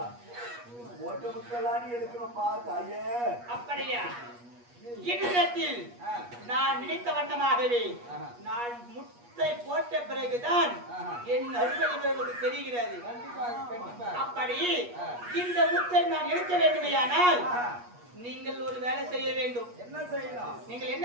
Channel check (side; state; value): left; late; 8.3 ms